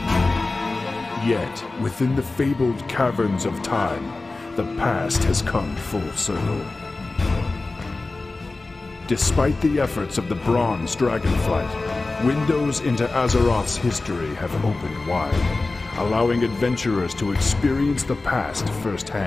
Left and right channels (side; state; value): right; quieter; 3.4 dB